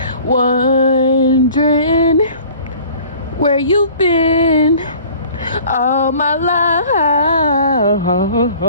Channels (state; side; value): inverted; both; correlation -0.48